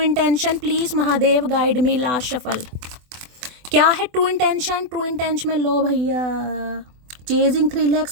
please Mahadev guide me. Last shuffle, क्या है ट्रू इंटेंशन, ट्रू इंटेंशन में लो भैया, चेजिंग थ्रिल है,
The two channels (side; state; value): left; late; 24 ms